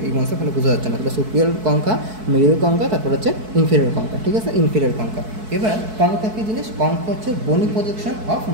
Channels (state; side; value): late; left; 4.6 ms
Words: এই অংশটা ভালো বোঝা যাচ্ছে না, তাহলে সুপিরিয়র কঙ্কা, মিডিয়াল কঙ্কা, তারপর হচ্ছে ইনফেরিয়র কঙ্কা। ঠিক আছে, ইনফেরিয়র কঙ্কা। এবার কঙ্কা কী জিনিস, কঙ্কা হচ্ছে বনি প্রজেকশন অফ